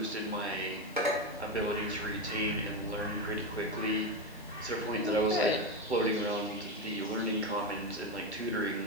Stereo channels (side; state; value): left; noise; hiss, 23 dB below the sound